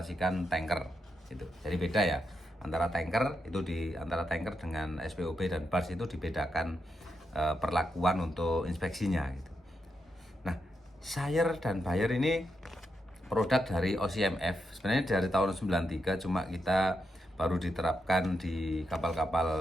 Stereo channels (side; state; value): both; normal; correlation 0.84